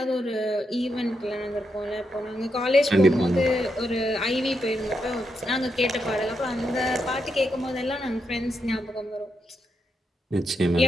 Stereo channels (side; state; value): both; normal; correlation 0.83